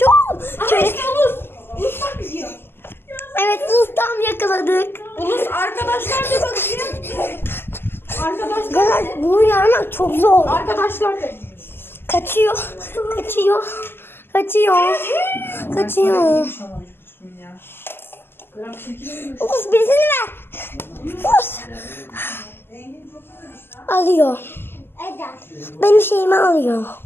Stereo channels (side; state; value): right; late; 0.11 ms